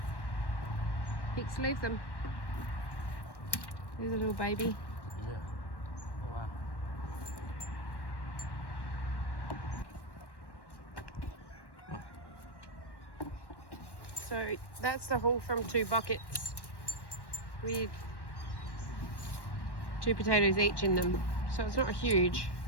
Pix, leave them. There's a little baby. Yeah. Oh, wow. So that's the haul from 2 buckets with 2 potatoes each in them. So it's not huge,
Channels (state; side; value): late; right; 1.1 ms